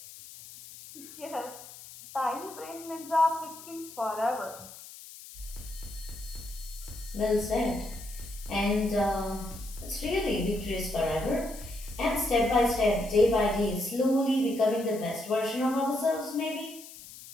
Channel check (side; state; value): left; noise; hiss, 16 dB below the sound